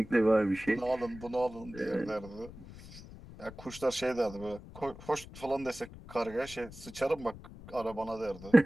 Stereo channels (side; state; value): left; noise; rumble, 16 dB below the sound